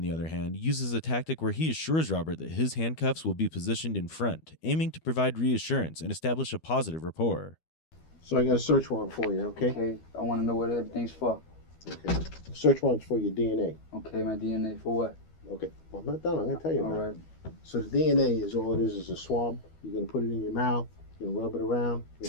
the other hand, uses a tactic where he assures Robert that his handcuffs will be positioned in front, aiming to provide reassurance and establish a positive rapport. So I got a search warrant for you, okay? Okay, I want to know what everything's for. Okay. Search warrant's for your DNA. Okay, my DNA for what? Okay. Well, I'm not done. I'm going to tell you All about right. it. So the DNA is all it is a swab. You're going to put it in your mouth. You're going to rub it around. You're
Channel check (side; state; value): right; late; 12 ms